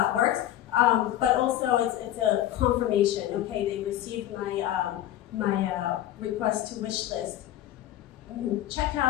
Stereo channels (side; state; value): right; quieter; 12.8 dB